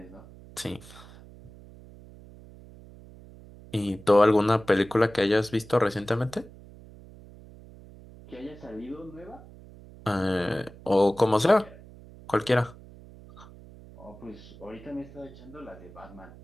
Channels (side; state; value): right; noise; hum, 20 dB below the sound